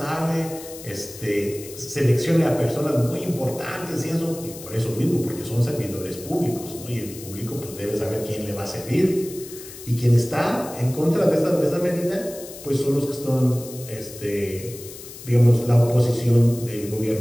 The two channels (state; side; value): noise; left; hiss, 15 dB below the sound